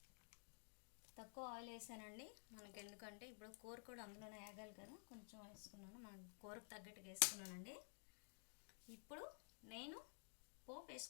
తక్కువ ఆయిల్ వేసానండి మనకి, ఎందుకంటే ఇప్పుడు కూర కూడా అందులోనే వేగాలి కదా, కొంచెం వేసుకున్నాను. మన కూరకు తగ్గట్టుగా వేసుకున్నానండి. ఇప్పుడు నేను పోపు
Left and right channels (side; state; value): right; silent; digital silence